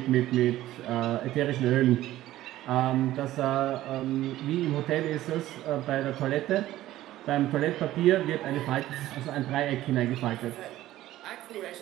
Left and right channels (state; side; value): quieter; left; 14.8 dB